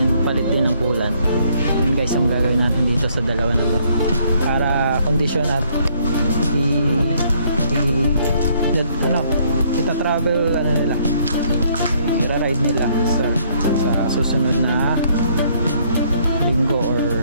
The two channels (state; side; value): inverted; both; correlation -0.66